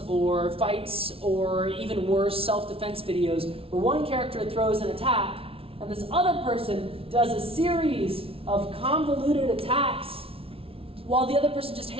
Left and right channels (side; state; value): left; late; 0.27 ms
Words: or fights or even worse, self-defense videos where one character throws an attack and this other person does a series of convoluted attacks while the other person just